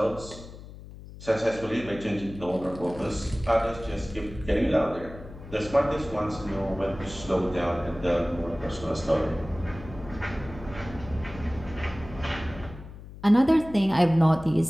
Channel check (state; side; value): noise; left; hum, 15 dB below the sound